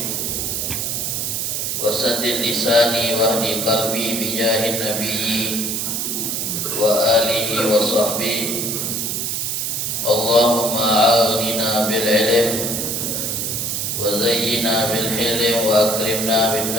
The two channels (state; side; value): noise; right; hiss, 1 dB below the sound